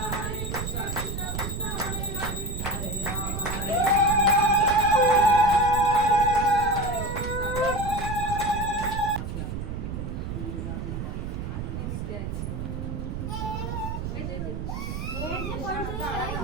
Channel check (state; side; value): noise; right; rumble, 4 dB below the sound